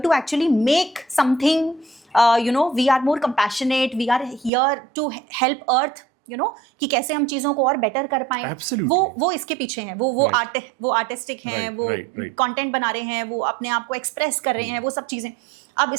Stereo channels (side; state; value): left; drops out; at 4.5 s